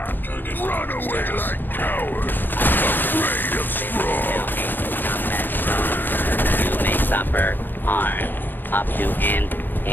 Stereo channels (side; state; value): right; late; 0.092 ms